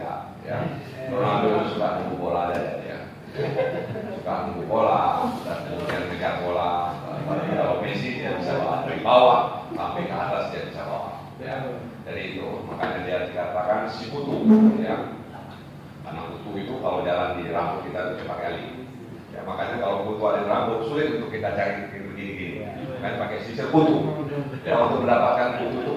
ya. Ronaldo suka nunggu bola aja, ya. Suka nunggu bola dan kemudian mengejar bola. Tapi kalau Messi dia bisa bawa dari bawah sampai ke atas, dia bisa bawa, ya. Jadi itu makanya dia dikatakan si kutu, ya. Karena kutu itu kalau jalan di rambut kita itu cepat kali. Ya, makanya kalau kutu ada rambut sulit untuk kita cari begini-gini. Kan pakai sisir kutu. Ya, untuk mendapatkan kutu itu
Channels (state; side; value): identical; both; correlation 1.00